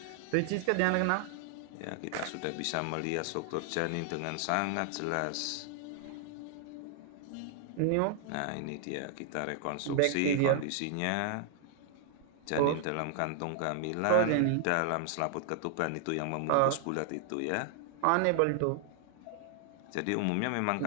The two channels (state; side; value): different; both; correlation 0.00